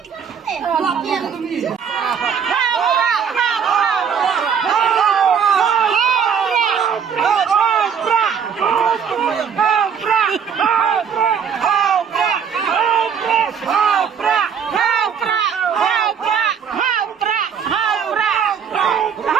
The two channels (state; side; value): quieter; left; 7.4 dB